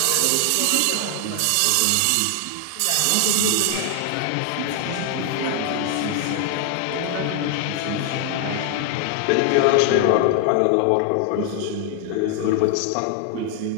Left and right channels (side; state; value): both; different; correlation 0.00